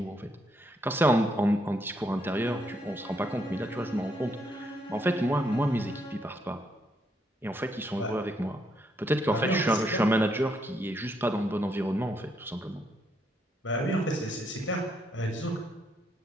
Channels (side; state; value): both; normal; correlation 0.75